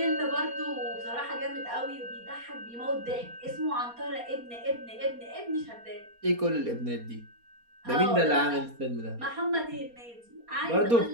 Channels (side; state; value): left; late; 4.3 ms